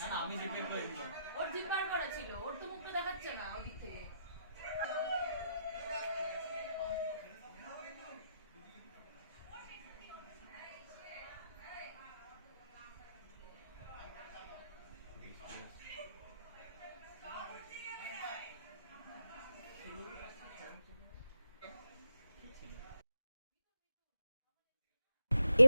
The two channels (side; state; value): both; inverted; correlation -0.81